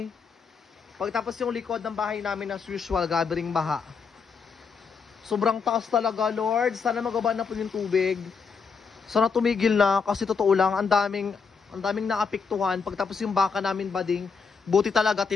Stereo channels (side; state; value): right; quieter; 5.6 dB